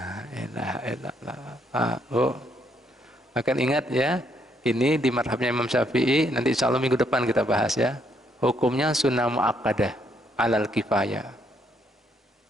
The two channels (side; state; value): both; normal; correlation 0.72